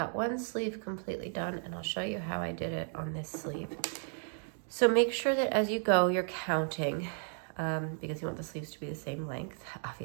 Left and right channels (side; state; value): left; silent; 55 dB below the other